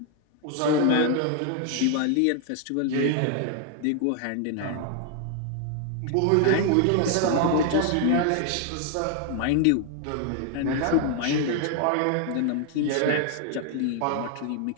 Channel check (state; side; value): different; both; correlation 0.00